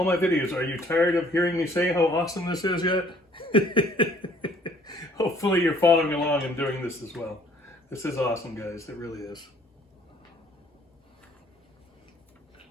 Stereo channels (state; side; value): normal; both; correlation 0.58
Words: my videos, are you tired of hearing me say how awesome this is yet? Hopefully you're following along and doing this as well. This is awesome, guys. It really is.